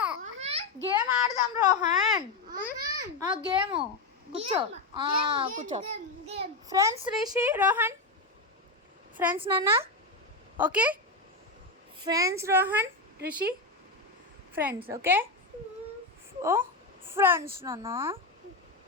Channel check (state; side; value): quieter; right; 3.3 dB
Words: గేమ్ ఆడదాం రోహన్. గేమ్ కూర్చో కూర్చో. ఫ్రెండ్స్ రిషి రోహన్ ఫ్రెండ్స్ నాన్న. Okay friends Rohan Rishi friends. Okay ఓ ఫ్రెండ్స్ నాన్న.